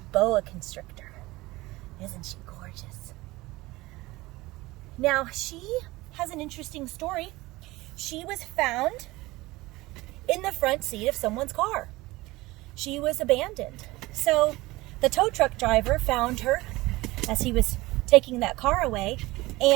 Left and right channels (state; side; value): quieter; left; 20.1 dB